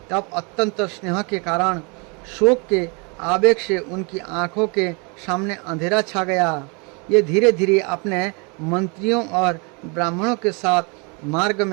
तब अत्यंत स्नेह के कारण शोक के आवेग से उनकी आंखों के सामने अंधेरा छा गया। ये धीरे धीरे अपने मंत्रियों और ब्राह्मणों के साथ मार्ग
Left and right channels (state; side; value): quieter; left; 32.3 dB